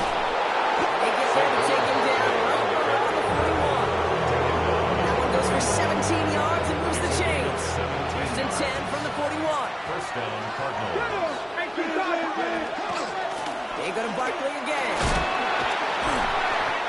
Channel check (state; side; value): identical; both; correlation 1.00